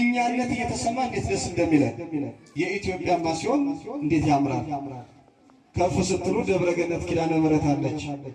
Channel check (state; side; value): identical; both; correlation 1.00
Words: እየተሰማ እንዴት ደስ እንደሚለን የኢትዮጵያማ ሲሆን እንዴት ያምራል። ከፍ ስትሉ ደብረ ገነት ኪዳነ ምሕረት አለች።